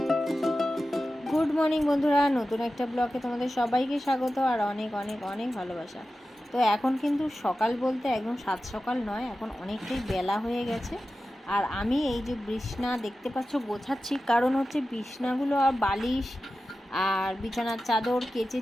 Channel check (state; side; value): normal; both; correlation 0.94